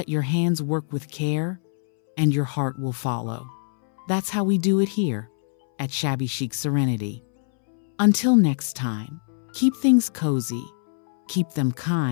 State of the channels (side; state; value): right; silent; 63 dB below the other